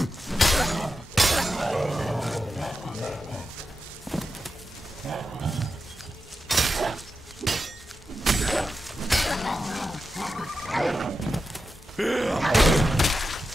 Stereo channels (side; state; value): both; normal; correlation 0.89